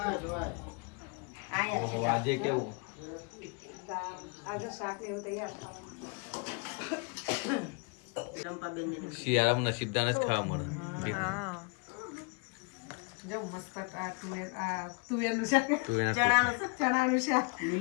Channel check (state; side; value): quieter; right; 32.8 dB